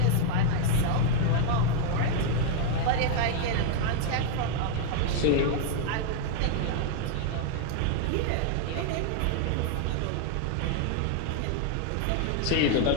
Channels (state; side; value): different; both; correlation 0.00